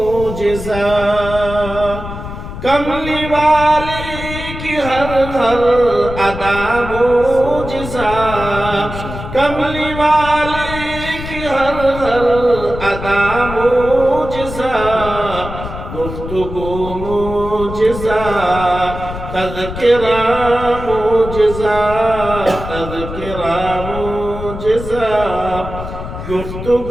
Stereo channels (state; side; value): noise; left; rumble, 9 dB below the sound